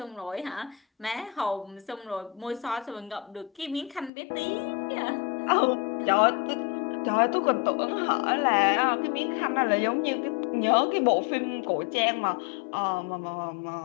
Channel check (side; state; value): right; drops out; at 4.1 s